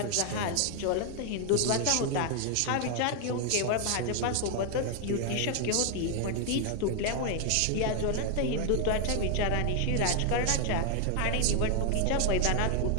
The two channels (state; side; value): different; both; correlation 0.00